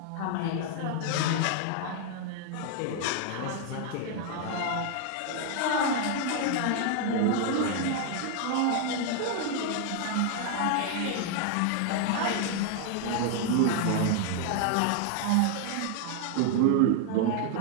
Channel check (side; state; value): both; different; correlation 0.00